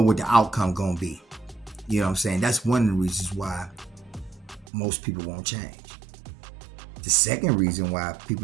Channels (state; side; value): drops out; left; at 4.7 s